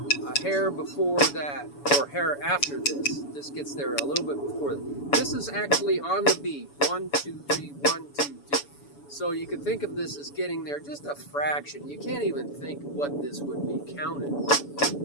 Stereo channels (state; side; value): late; right; 7.0 ms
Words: a hair before that, or hair after this. This gets there a little bit before that. This is actually on the beat. 1, 2, 3, 1, 2, 3. So you can think of this as getting there just a fraction. You can't even think what this would be counted.